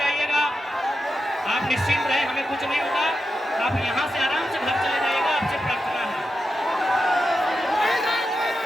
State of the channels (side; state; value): both; normal; correlation 0.89